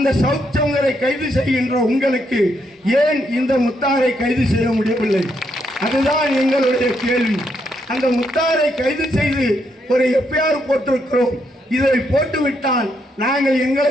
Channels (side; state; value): both; normal; correlation 0.77